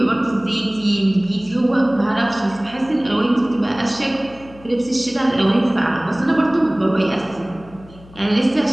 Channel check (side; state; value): left; noise; hum, 22 dB below the sound